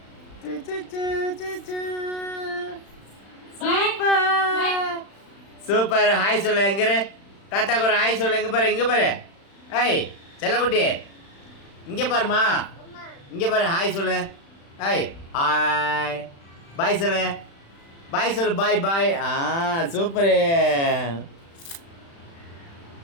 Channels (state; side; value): late; right; 36 ms